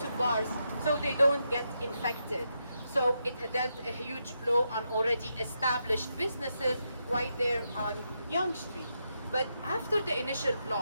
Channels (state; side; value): inverted; both; correlation -0.83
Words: bars so they don't get infected. So it dealt a huge blow on already established businesses right there on Yonge Street. But after the initial